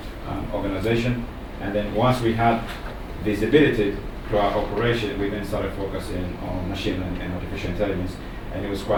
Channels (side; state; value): both; identical; correlation 1.00